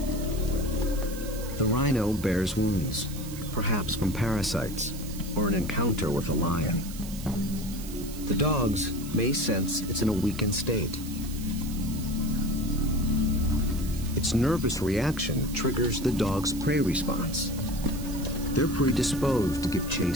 The rhino bears wounds, perhaps from parasites or an encounter with a lion. The dogs may sense it's in a weakened state. Its nervous reaction triggers the dog's prey response. They're predisposed to give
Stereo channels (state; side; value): noise; right; hiss, 14 dB below the sound